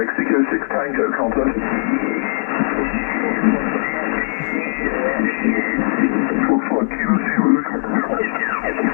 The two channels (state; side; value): silent; right; digital silence